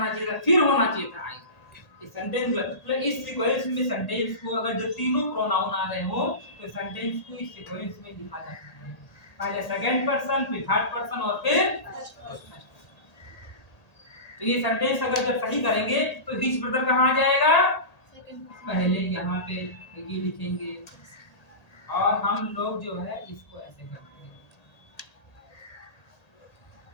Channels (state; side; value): late; right; 1.8 ms